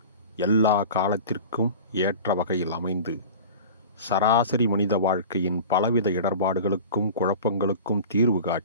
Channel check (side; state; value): both; inverted; correlation -0.35